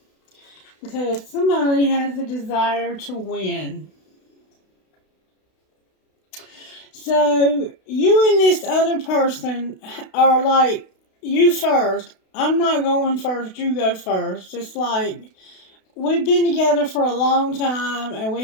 because somebody has the desire to win. So you and this other person are like, you first. I'm not going first, you go first. It's like, we've been together for a long time and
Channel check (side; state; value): right; late; 32 ms